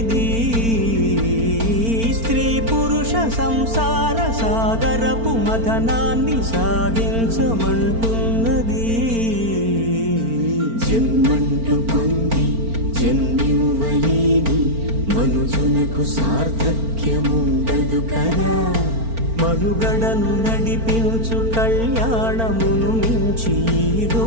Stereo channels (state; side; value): late; left; 4.4 ms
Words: స్త్రీ పురుష సంసార సాగరపు మథనాన్ని సాగించమంటున్నది జన్మంటూ పొంది జన్మివ్వలేని మనుజునకు సార్థక్యముండదు కదా మనుగడను నడిపించు కళ్యాణమును మించి ఈ